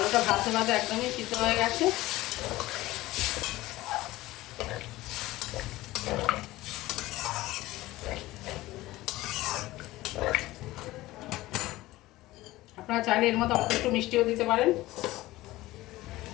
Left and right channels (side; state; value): right; quieter; 17.8 dB